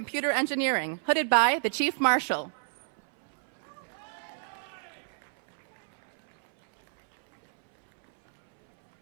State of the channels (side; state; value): left; silent; 59 dB below the other